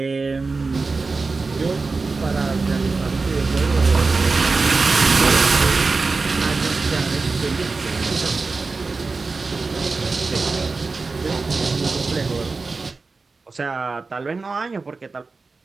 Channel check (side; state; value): left; quieter; 4.0 dB